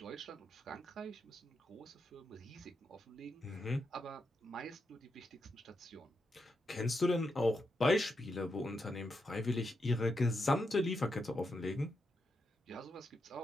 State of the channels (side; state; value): both; normal; correlation 0.84